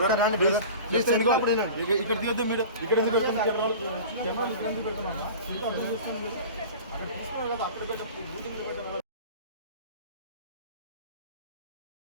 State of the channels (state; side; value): inverted; both; correlation -0.38